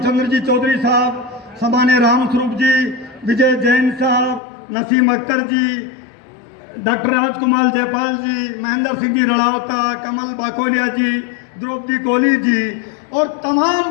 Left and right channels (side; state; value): right; drops out; at 4.4 s